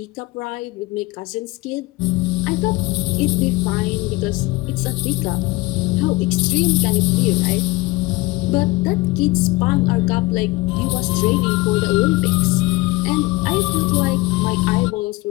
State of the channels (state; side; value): quieter; right; 21.5 dB